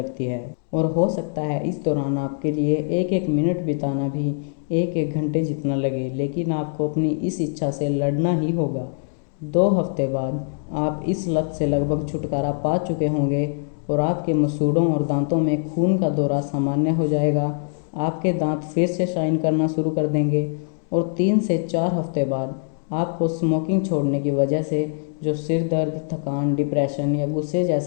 है। और हो सकता है इस दौरान आपके लिए एक एक मिनट बिताना भी 1-1 घंटे जितना लगे, लेकिन आपको अपनी इस इच्छा से लड़ना ही होगा। 2 हफ्ते बाद आप इस लत से लगभग छुटकारा पा चुके होंगे और आपके मसूड़ों और दांतों में खून का दौरा सामान्य हो जाएगा। आपके दांत फिर से शाइन करना शुरू कर देंगे और 3 से 4 हफ्ते बाद आपको स्मोकिंग छोड़ने की वजह से जो सिर दर्द, थकान, डिप्रेशन या गुस्से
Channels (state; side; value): silent; right; digital silence